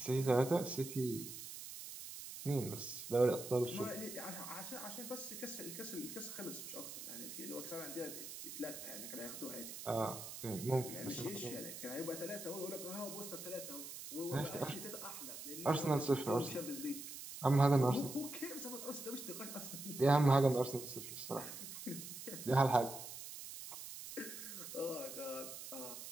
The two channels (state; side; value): noise; right; hiss, 9 dB below the sound